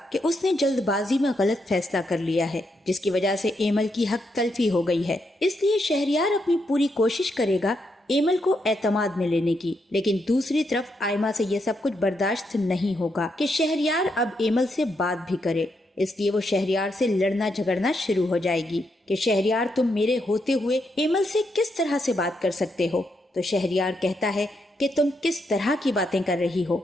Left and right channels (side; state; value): both; normal; correlation 0.80